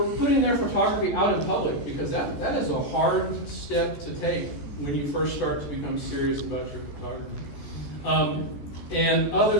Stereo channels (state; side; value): late; right; 14 ms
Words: putting their photography out in public, because that is a hard step to take when you first start to become serious about your photography. And